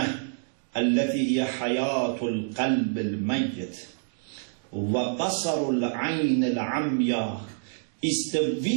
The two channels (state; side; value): silent; left; digital silence